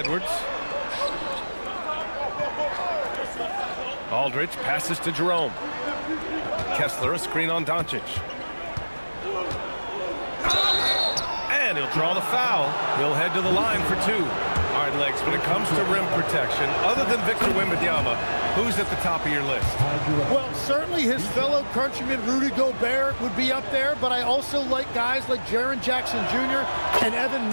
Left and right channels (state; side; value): inverted; both; correlation -1.00